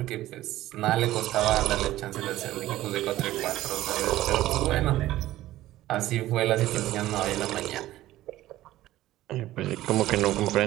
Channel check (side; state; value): left; quieter; 15.2 dB